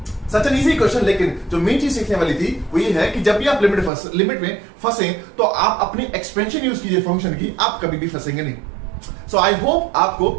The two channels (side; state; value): left; drops out; at 3.9 s